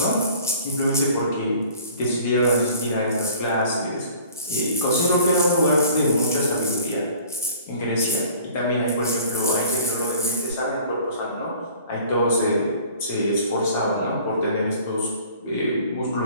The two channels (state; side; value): inverted; both; correlation -0.50